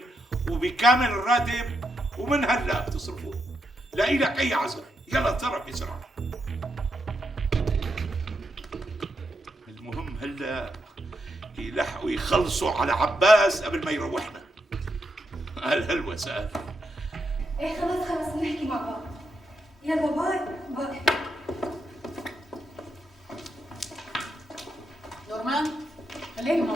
وبكامل الراتب، ومن هلا بتصرفوه. لا إلك أي عذر. يلا اتصرف بسرعة. المهم هلا يلحقوا يخلصوا على عباس قبل ما يروحنا. قال هلوس قال. ايه خلص نحكي مع بعض. يلا باي. نورمان خليني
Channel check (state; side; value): normal; both; correlation 0.82